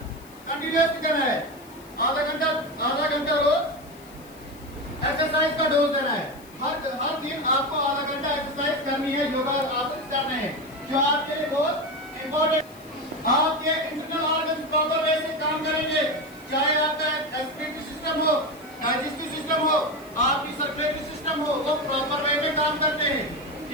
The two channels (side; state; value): left; noise; hiss, 24 dB below the sound